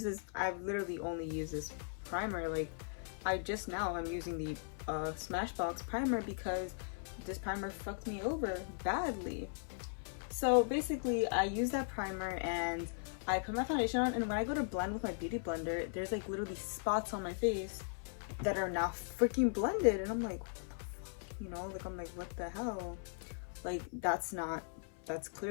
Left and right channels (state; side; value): silent; right; 52 dB below the other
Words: literally only used this primer. Like, I'm using the Smashbox Primer because this primer fucked me over badly. So basically, I use that primer and I put my foundation on, and when I go to blend with my beauty blender, there's like literally spots on my face that are now freaking blended, and I'm like, what the fuck? You know, like I'm like, what the hell? Like that's